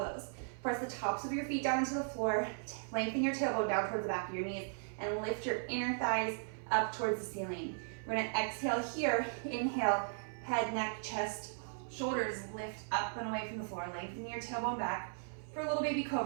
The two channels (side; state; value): left; silent; 53 dB below the other